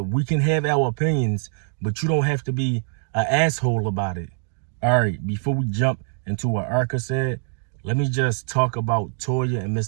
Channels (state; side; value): silent; left; digital silence